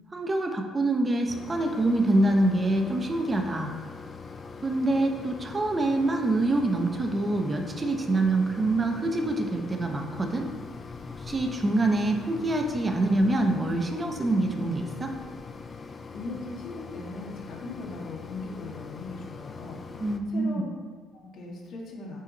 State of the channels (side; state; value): both; normal; correlation 0.82